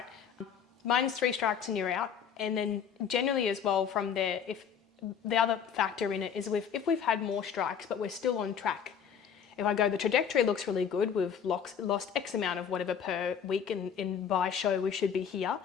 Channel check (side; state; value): right; quieter; 7.6 dB